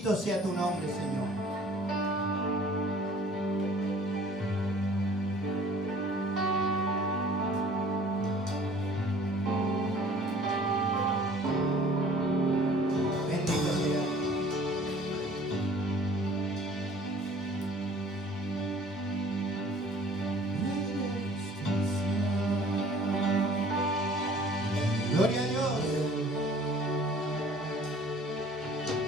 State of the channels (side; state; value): both; normal; correlation 0.51